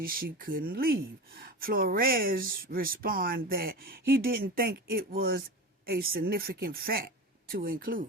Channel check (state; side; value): normal; both; correlation 0.28